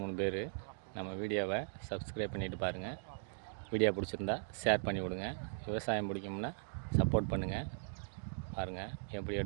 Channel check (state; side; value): silent; left; digital silence